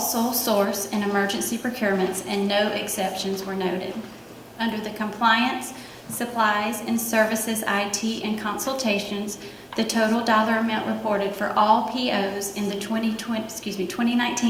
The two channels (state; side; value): identical; both; correlation 1.00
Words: source and emergency procurements and no exceptions were noted. Under the compliance, supplies and services, IT, and consultations, the total dollar amount reported for all POs in the